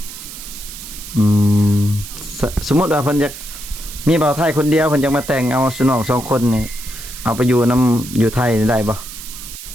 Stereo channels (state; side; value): noise; right; hiss, 12 dB below the sound